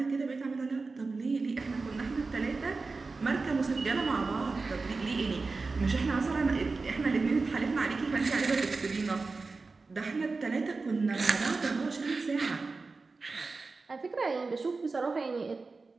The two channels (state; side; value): quieter; left; 4.0 dB